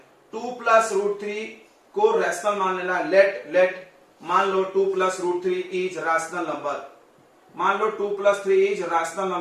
2 प्लस रूट 3 को रैशनल मान लेना है। लेट मान लो 2 plus root 3 is rational number, मान लो 2 प्लस 3 इज रैशनल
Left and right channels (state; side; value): identical; both; correlation 1.00